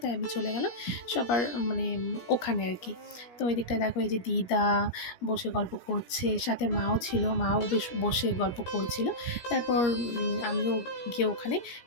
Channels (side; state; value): right; late; 17 ms